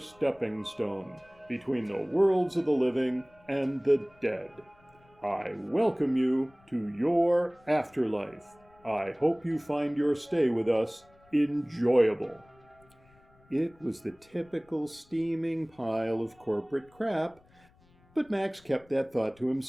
stone between the worlds of the living and the dead. I welcome you to your afterlife. I hope you find your stay with us enjoyable. It was the typical steaming pile of corporate crap, but Max kept that thought to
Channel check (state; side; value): noise; left; rumble, 30 dB below the sound